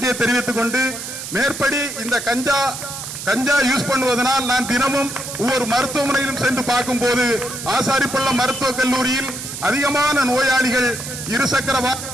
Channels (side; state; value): right; noise; hiss, 8 dB below the sound